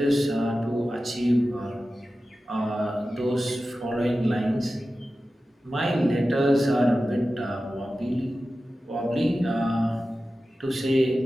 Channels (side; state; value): both; normal; correlation 0.94